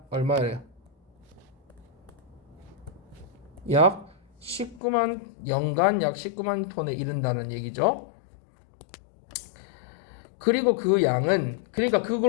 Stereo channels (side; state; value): right; drops out; at 4.8 s